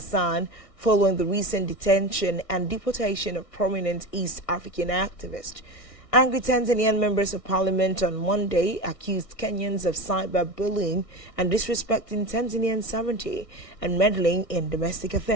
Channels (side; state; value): right; late; 1.6 ms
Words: following the recent detention and deportation of prominent East African activists. Angry Tanzanian members of parliament on Monday accused Kenyans of cyberbullying and disrespecting Tanzanian sovereignty and meddling in domestic